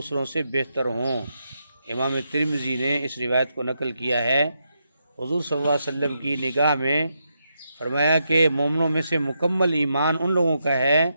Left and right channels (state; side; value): inverted; both; correlation -0.83